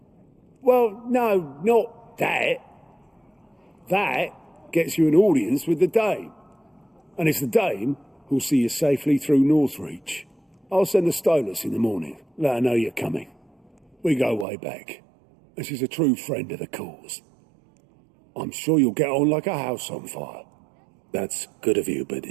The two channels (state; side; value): drops out; left; at 14.5 s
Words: Well, no, not that. That gets you an audience with the Dame. And it's the Dame who'll see you safely through Northreach. I'll send the Stolas in the morning, let her know you're coming. We go way back, and she's a true friend of the cause. I'm sure you'll get on like a house on fire. That's good of you, but